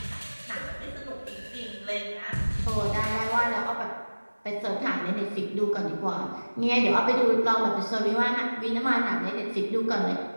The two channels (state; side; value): inverted; both; correlation -1.00